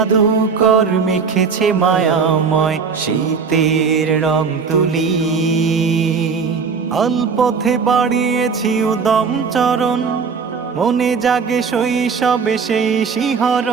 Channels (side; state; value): left; quieter; 5.6 dB